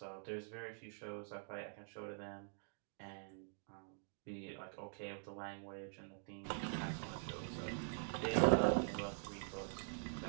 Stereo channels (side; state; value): left; silent; digital silence